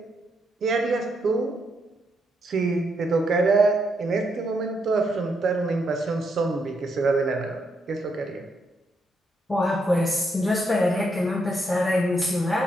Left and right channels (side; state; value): both; normal; correlation 0.78